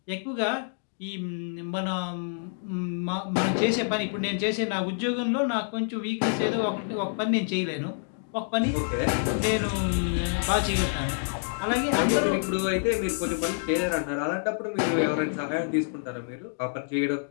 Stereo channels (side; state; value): right; silent; digital silence